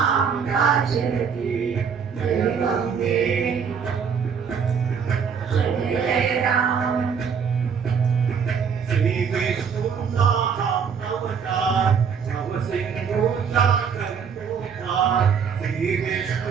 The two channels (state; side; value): quieter; left; 6.6 dB